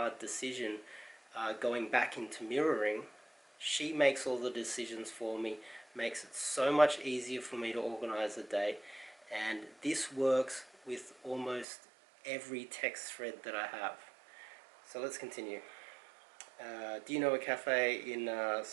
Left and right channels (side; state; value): left; drops out; at 11.7 s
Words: decision, going back into mirroring, she makes all the decisions for me, makes it so much easier for me to organize a day. And this works with almost every text thread that I have. So let's continue. Do you know a cafe in